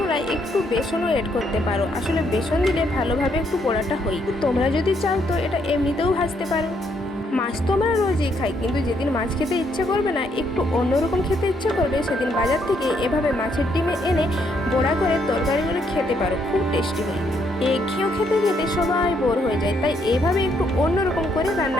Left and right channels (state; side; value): normal; both; correlation 0.73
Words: একটু বেসনও এড করতে পারো। আসলে বেসন দিলে ভালোভাবে একটু বড়াটা হয়। তোমরা যদি চাও তো এটা এমনিতেও ভাজতে পারো। মাছ তো আমরা রোজই খাই, কিন্তু যেদিন মাছ খেতে ইচ্ছে করবে না, একটু অন্যরকম খেতে ইচ্ছে করবে, সেদিন বাজার থেকে এভাবে মাছের ডিমে এনে বড়া করে তরকারিগুলো খেতে পারো। খুব টেস্টি হয়। খেয়েও খেতে খেতে সবাই বোর হয়ে যায়, তাই এভাবে একটু অন্যরকম করে